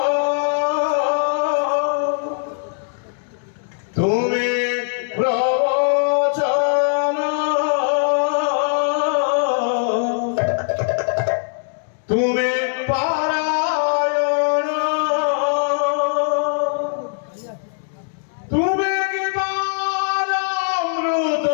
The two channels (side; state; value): right; silent; digital silence